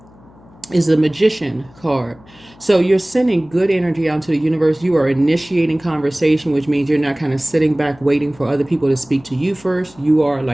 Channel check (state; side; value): noise; left; hum, 26 dB below the sound